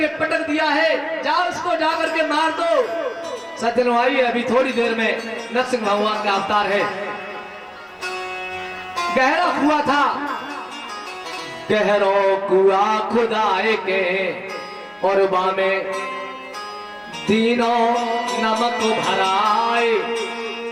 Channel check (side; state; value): both; identical; correlation 1.00